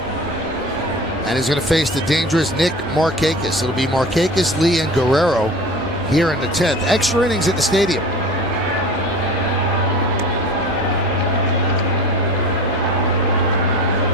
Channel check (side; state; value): both; normal; correlation 0.37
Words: And he's going to face the dangerous Nick Markakis. It'll be Markakis, Lee, and Guerrero here in the 10th. Extra innings at the stadium.